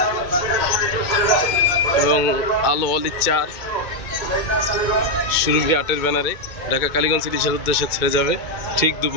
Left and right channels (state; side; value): late; right; 2.2 ms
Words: এবং আলো অলি 4 সুরভি 8-এর ব্যানারে ঢাকা কালীগঞ্জ ইলিশের উদ্দেশ্যে ছেড়ে যাবে ঠিক